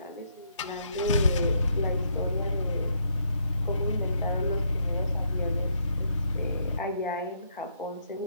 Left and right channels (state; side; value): inverted; both; correlation -0.73